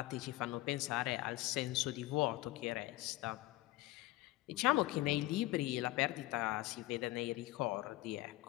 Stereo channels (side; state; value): right; quieter; 18.6 dB